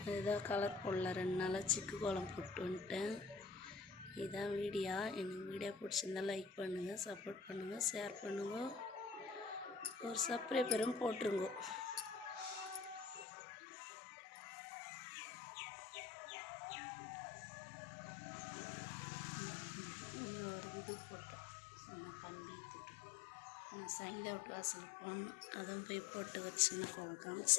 இதுதான் கலர் போடல. 2 நாளாக சிக்கு கோலம் போட்டு வந்துட்டேன். இதுதான் வீடியோ. எனக்கு வீடியோ பிடிச்சிருந்தா லைக் பண்ணுங்கள், சப்போர்ட் பண்ணுங்கள், ஷேர் பண்ணுங்க, ஒரு சப்ஸ்கிரைபரும் போட்டுருங்க. இது போட்டோம் சொன்ன கம்பி திட்டு நான் சைந்தா விட்டு வாசல் போகணும். அதான் போய் போட்டு வச்சுன்னா கோலம்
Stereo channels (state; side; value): drops out; right; at 13.2 s